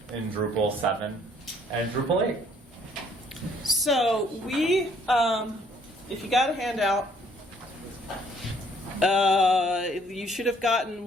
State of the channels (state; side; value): normal; both; correlation 0.63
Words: in Drupal 7 and Drupal 8. So we, if you got a handout, you should have gotten